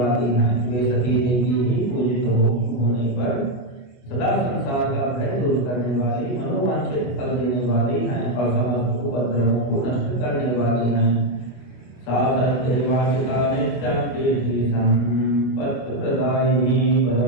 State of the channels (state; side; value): late; right; 25 ms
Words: हैं। वे सती देवी ही पूजित होने पर सदा संसार का भय दूर करने वाली, मनोवांछित फल देने वाली हैं और समस्त उपद्रवों को नष्ट करने वाली हैं। सा सत्यवाचिता नित्यं कीर्ति संपत्ति प्रदायिनी